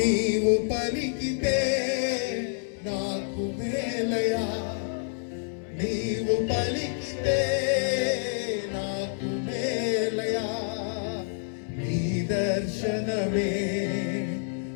పలికితే నాకు మేలయా, నీవు పలికితే నాకు మేలయా. నీ దర్శనమే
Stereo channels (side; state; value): right; silent; digital silence